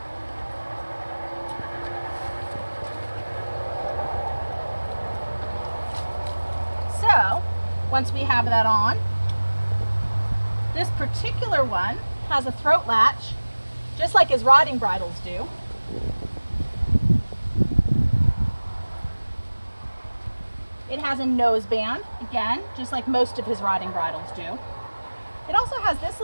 So, once we have that on, this particular one has a throat latch, just like his riding bridles do. It has a nose band, again, just like most of his riding bridles do. It also has this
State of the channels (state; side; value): inverted; both; correlation -1.00